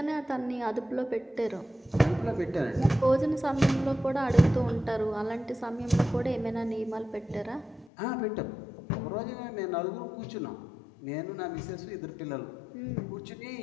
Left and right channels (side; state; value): right; drops out; at 7.9 s